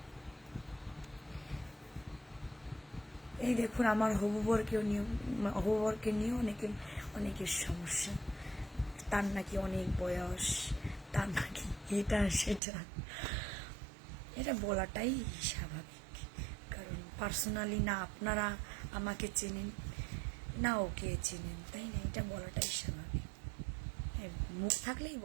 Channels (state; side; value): drops out; left; at 12.6 s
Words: এই দেখুন, আমার হবুবরকে নিয়ে অনেকের সমস্যা। তার নাকি অনেক বয়স, তার নাকি এটা সেটা, এটা বলাটাই স্বাভাবিক। কারণ পার্সোনালি না আপনারা আমাকে চেনেন, না ওকে চেনেন, তাই না? এটা বলাটাই স্বাভাবিক। মুখ থাকলেই